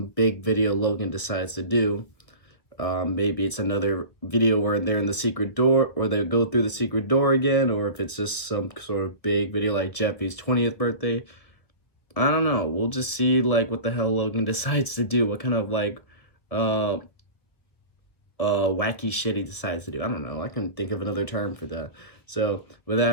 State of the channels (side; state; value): right; late; 1.7 ms